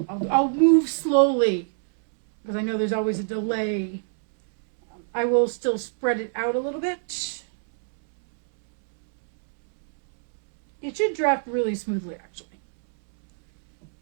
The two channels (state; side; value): silent; left; digital silence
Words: So I'll move slowly because I know there's always a delay. I will still spread it out a little bit. It should draft really smoothly, actually.